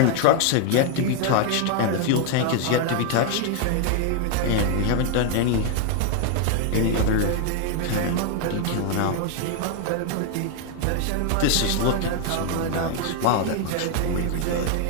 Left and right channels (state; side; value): different; both; correlation 0.01